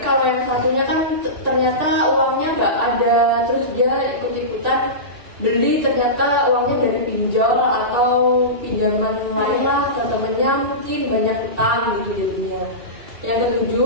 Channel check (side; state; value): left; late; 2.6 ms